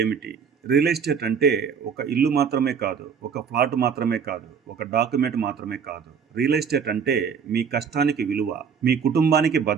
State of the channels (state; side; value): quieter; left; 6.6 dB